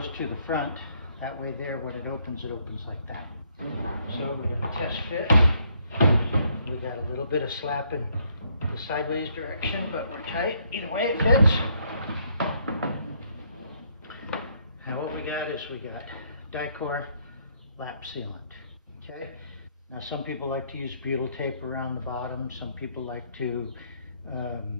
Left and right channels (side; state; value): both; inverted; correlation -0.70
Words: to the front, that way there when it opens like that. So we're going to test fit. We got a little bit of slap in the sideways direction, but we're tight. Either way it fits. Now what we got is we got Dicor lap sealant. Okay. Now some people like to use butyl tape around the bottom. Some people like to